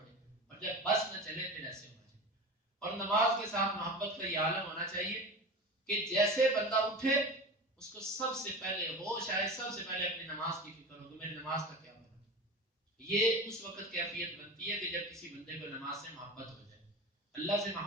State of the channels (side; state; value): both; normal; correlation 0.30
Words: اور جب بس نہ چلے پھر ایسے ہونا چاہیے. اور نماز کے ساتھ محبت کا یہ عالم ہونا چاہیے کہ جیسے بندہ اٹھے اس کو سب سے پہلے ہوش آئے, سب سے پہلے اپنی نماز کی فکر ہو کہ میری نماز کا کیا بنا. یہ اس وقت کیفیت بنتی ہے کہ جب کسی بندے کو نماز سے محبت ہو جائے, اللہ سے